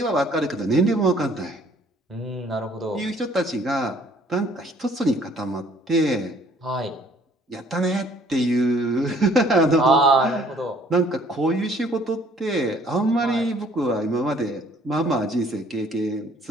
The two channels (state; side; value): normal; both; correlation 0.58